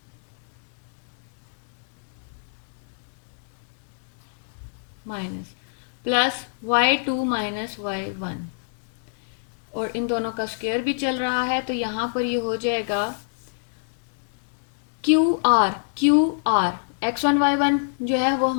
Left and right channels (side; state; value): right; silent; digital silence